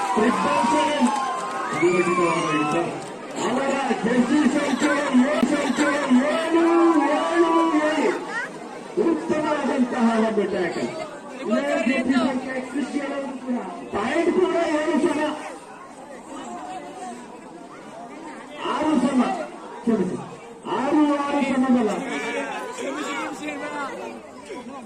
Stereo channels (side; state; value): both; identical; correlation 1.00